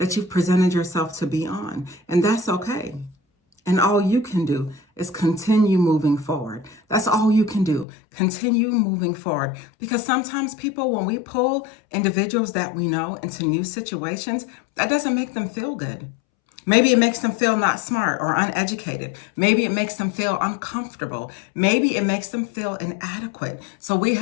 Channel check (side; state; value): right; drops out; at 7.9 s